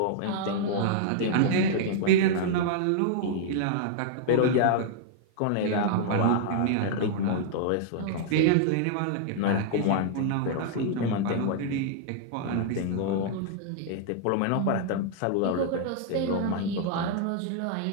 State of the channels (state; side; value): different; both; correlation -0.01